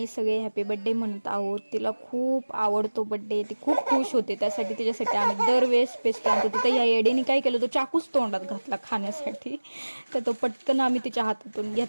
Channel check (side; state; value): both; inverted; correlation -1.00